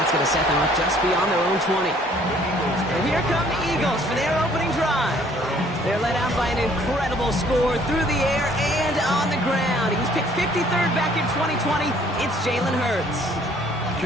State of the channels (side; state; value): both; normal; correlation 0.59